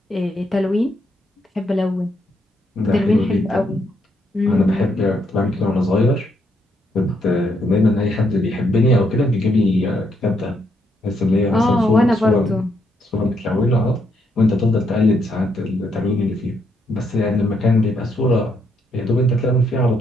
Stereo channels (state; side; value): normal; both; correlation 0.75